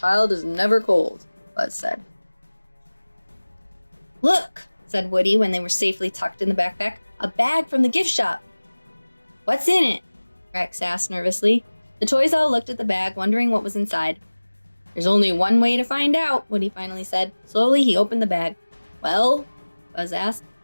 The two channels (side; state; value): both; inverted; correlation -1.00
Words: is never cold, Buzz said. Look, said Woody when they were safely tucked in the backpack. A bag from the gift shop. What's in it? Rex asked nervously. The toys all looked at the bag, wondering what was inside. There's only one way to find out, Woody finally said. Slowly, he opened the bag. Well? Buzz asked.